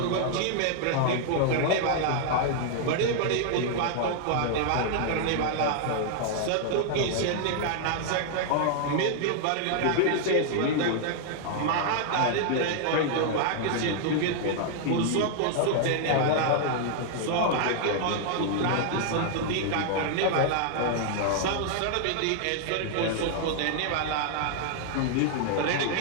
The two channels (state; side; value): different; both; correlation -0.01